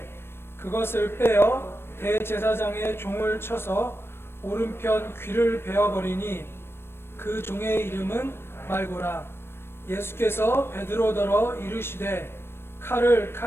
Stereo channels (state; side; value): late; right; 0.12 ms